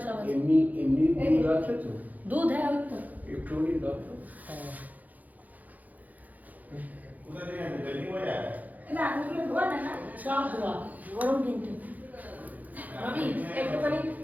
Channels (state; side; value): late; left; 0.080 ms